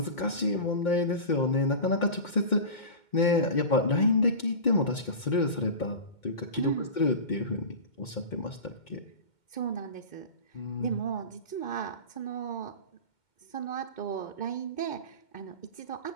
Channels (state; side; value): late; right; 2.1 ms